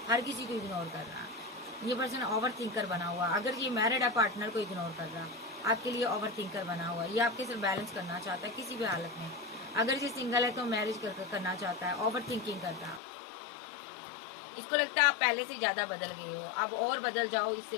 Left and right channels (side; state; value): right; drops out; at 13.0 s